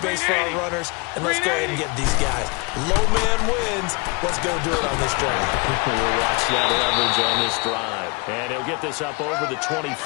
for our runners, and let's go ahead and get these guys. Low man wins. Let's go do it on this drive. We'll watch that leverage on this drive. And he'll get this up over the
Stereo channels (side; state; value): right; quieter; 29.5 dB